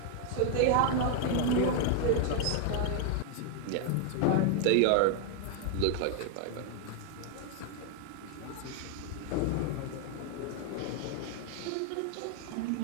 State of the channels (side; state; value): both; different; correlation 0.00